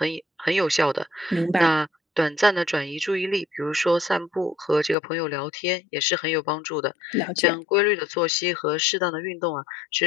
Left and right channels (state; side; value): drops out; right; at 5.0 s